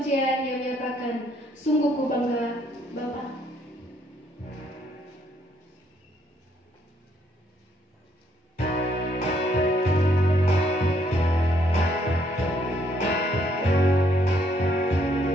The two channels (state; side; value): normal; both; correlation 0.70